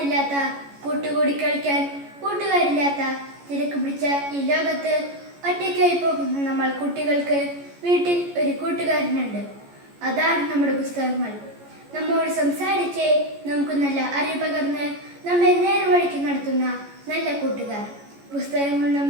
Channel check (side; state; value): left; late; 14 ms